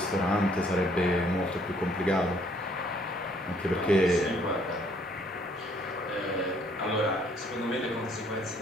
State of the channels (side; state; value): both; normal; correlation 0.64